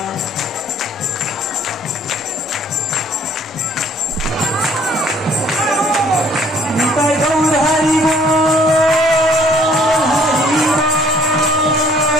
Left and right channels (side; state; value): both; normal; correlation 0.59